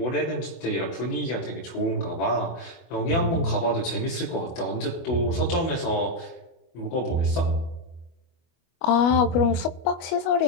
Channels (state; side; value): late; right; 24 ms